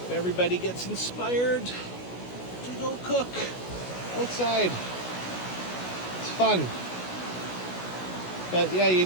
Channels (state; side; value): late; right; 16 ms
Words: everybody gets inspired to go cook outside. It's fun. But yeah, you